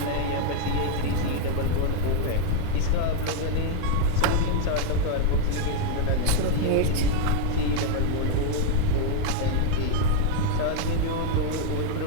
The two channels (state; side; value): different; both; correlation 0.00